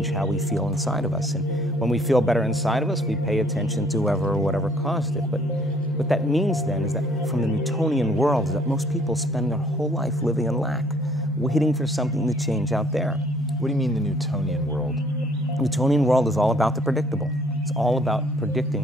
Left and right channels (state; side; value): normal; both; correlation 0.60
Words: how we feel inside of us. And when we feel better inside of us, we pay attention to whoever or whatever caused it. But what that means then is that from the Newtonian world is that most people spend their whole life living in lack, waiting for something to change out there. What do you mean the Newtonian world? The Newtonian world is all about the predictable. It's all about predicting